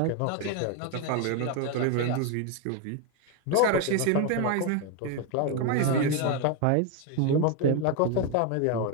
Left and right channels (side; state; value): both; different; correlation 0.01